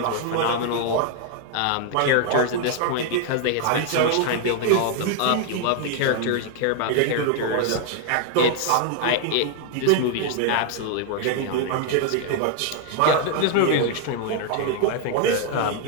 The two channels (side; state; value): both; different; correlation 0.00